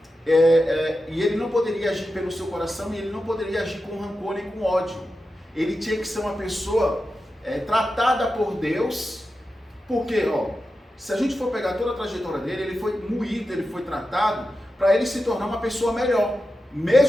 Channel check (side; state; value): both; normal; correlation 0.91